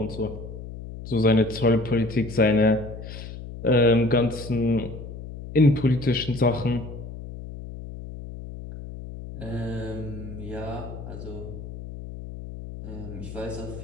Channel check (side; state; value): left; noise; hum, 11 dB below the sound